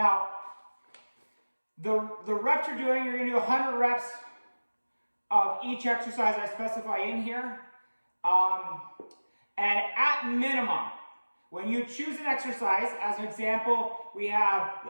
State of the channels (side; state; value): both; inverted; correlation -1.00